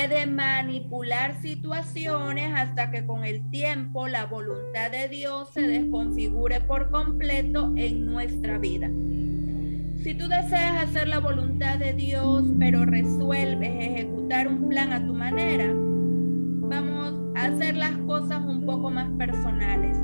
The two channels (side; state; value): both; inverted; correlation -1.00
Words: manipular situaciones hasta que con el tiempo la voluntad de Dios se desconfigure por completo en nuestra vida. Si tú deseas hacer la voluntad de Dios, pero resuelves ejecutar un plan a tu manera, vamos a hacer las cosas un poco más personales.